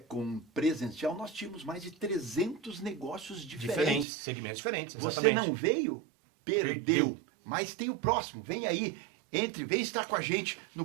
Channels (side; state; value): left; drops out; at 4.0 s